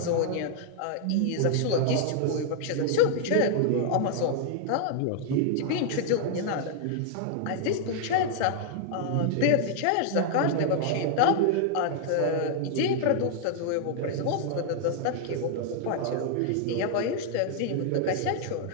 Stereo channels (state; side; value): different; both; correlation 0.00